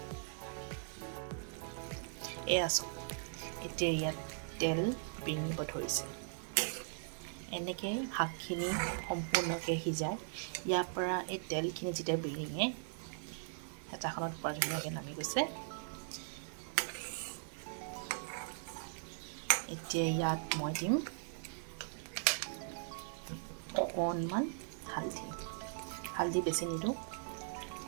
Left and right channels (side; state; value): left; silent; 52 dB below the other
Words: এয়া চাওক, এতিয়া ইয়াত তেল বিৰিঙিব ধৰিছে। এনেকৈ শাকখিনি সম্পূৰ্ণকৈ সিজাই ইয়াৰ পৰা এই তেলখিনি যেতিয়া বিৰিঙে হেতাখনত পৰা ধুনীয়াকৈ নামি গৈছে। এতিয়া ইয়াত মই দিম অকণমান হালধি বেছি নিদিওঁ,